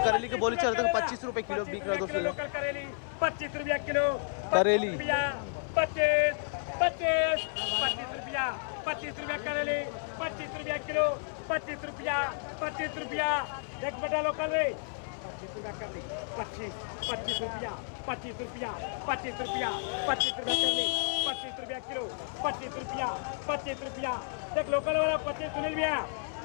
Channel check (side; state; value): right; silent; 57 dB below the other